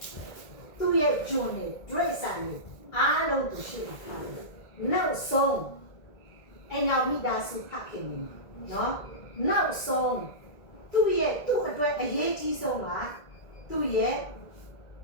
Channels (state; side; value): late; right; 1.8 ms